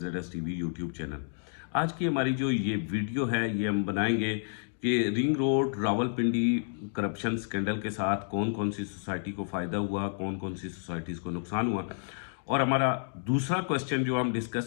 TV यूट्यूब चैनल। आज की हमारी जो ये वीडियो है ये हम बनाएंगे कि ring road Rawalpindi corruption scandal के साथ कौन कौन सी सोसाइटी को फ़ायदा हुआ, कौन कौन सी सोसाइटीज़ को नुकसान हुआ। और हमारा दूसरा क्वेश्चन जो हम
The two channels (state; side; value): silent; right; digital silence